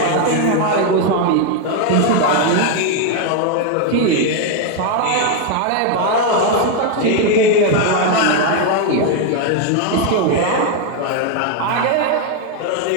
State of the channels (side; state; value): both; different; correlation 0.01